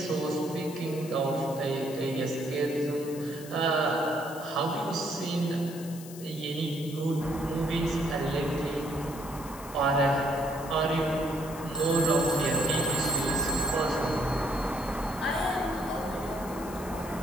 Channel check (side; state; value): left; noise; hiss, 16 dB below the sound